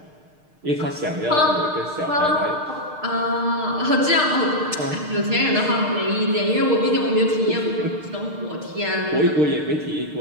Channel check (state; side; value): late; left; 6.6 ms